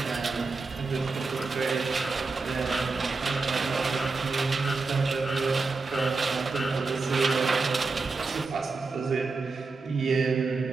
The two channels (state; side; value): quieter; left; 4.1 dB